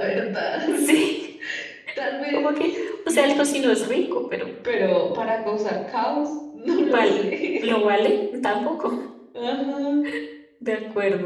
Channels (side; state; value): both; identical; correlation 1.00